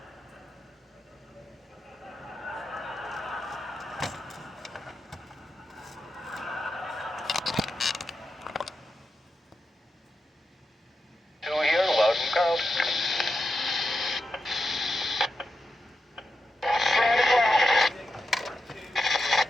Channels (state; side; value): normal; both; correlation 0.88